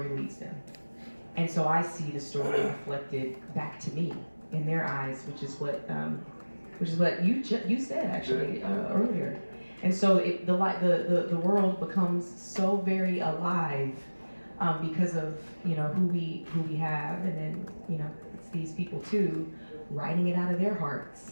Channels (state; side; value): inverted; both; correlation -1.00